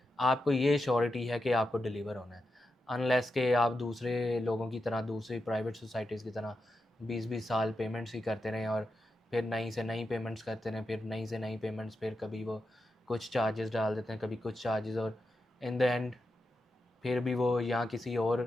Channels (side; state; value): both; normal; correlation 0.88